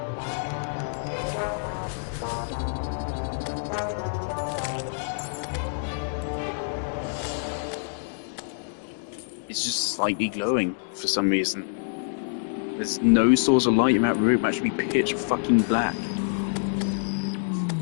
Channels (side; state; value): right; silent; digital silence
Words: It's just slightly glowing for some reason. There's no source of light in that room, actually pitch fucking black.